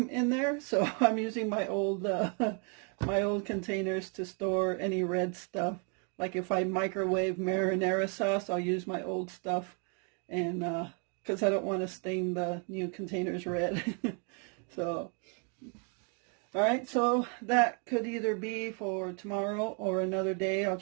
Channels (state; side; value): quieter; left; 36.8 dB